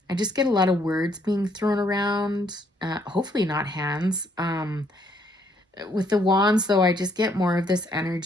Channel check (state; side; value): normal; both; correlation 0.69